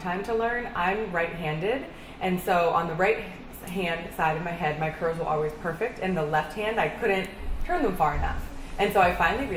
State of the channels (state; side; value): identical; both; correlation 1.00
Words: to learn. I'm right-handed, and so on the right hand side of my head, my curls were always perfect, and the left hand, I couldn't turn them far enough. And so I finally